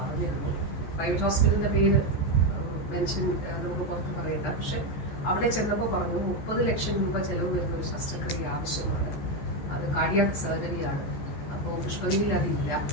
പ്രൈവറ്റ് ഹോസ്പിറ്റലിന്റെ പേര് മെൻഷൻ നമുക്ക് പുറത്ത് പറയണ്ട. പക്ഷെ അവിടെ ചെന്നപ്പോൾ പറഞ്ഞു 30 ലക്ഷം രൂപ ചെലവ് വരുന്ന ഒരു ശസ്ത്രക്രിയ ആവശ്യമാണ്, അത് കാർഡിയാക് സർജറിയാണ്. അപ്പോൾ പുഷ്പഗിരിയിൽ അതില്ല.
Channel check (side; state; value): right; late; 14 ms